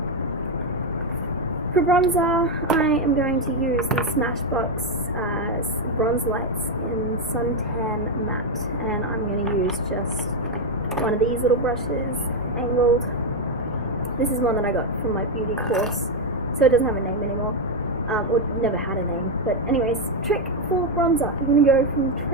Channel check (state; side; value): normal; both; correlation 0.05